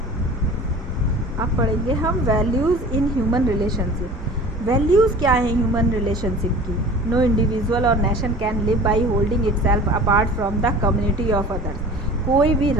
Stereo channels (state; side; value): normal; both; correlation 0.41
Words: अब पढ़ेंगे हम values in human relationship. Values क्या हैं ह्यूमन रिलेशनशिप की? नो इंडिविजुअल और nation can live by holding itself apart from the community of others. कोई भी